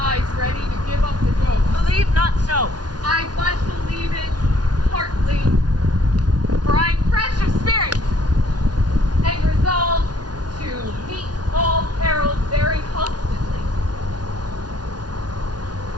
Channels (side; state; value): left; late; 0.69 ms